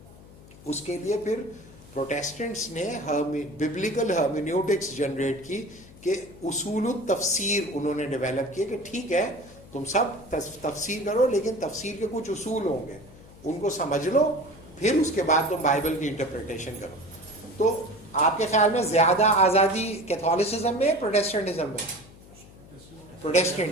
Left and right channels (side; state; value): left; noise; hum, 21 dB below the sound